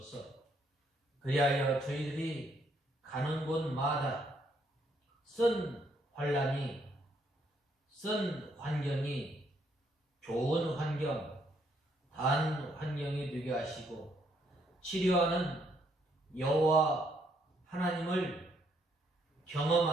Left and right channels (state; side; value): normal; both; correlation 0.71